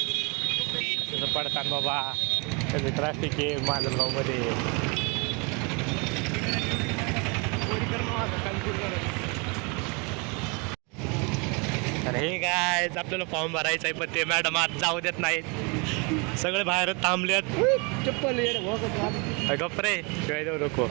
पडताना बाबा ट्रॅफिक आहे माजलगावमध्ये. तर हे काय, आपल्याला फॉर्म भरायचा आहे, पण ते मॅडम आज जाऊ देत नाहीत. सगळे बाहेर थांबलेत. चप्पल गप्रे शिवाय देऊ नको.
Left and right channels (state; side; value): quieter; left; 31.3 dB